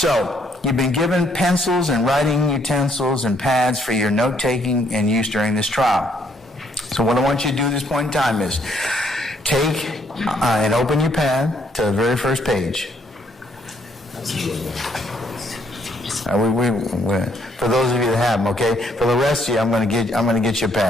you've been given pencils and writing utensils and pads for your note-taking and use during this trial. So what I want you to do at this point in time is take and open your pad to the very first page. For those of you that have them, okay? For the rest of you, I'm going to get you a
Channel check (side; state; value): both; normal; correlation 0.69